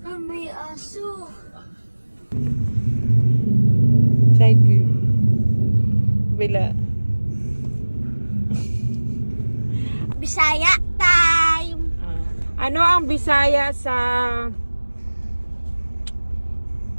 May aso. Side view. Bila. Bisaya time. Ano ang Bisaya sa...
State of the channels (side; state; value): both; inverted; correlation -1.00